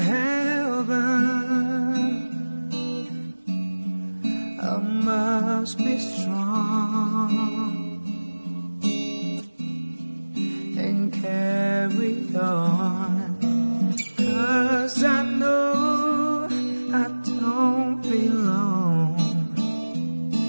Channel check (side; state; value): both; inverted; correlation -1.00